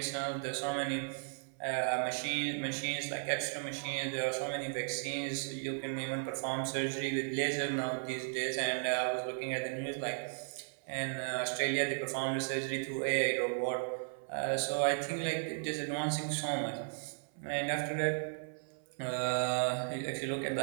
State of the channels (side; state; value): left; silent; 54 dB below the other